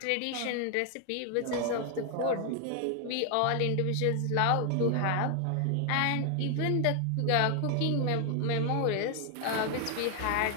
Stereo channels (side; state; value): both; different; correlation 0.00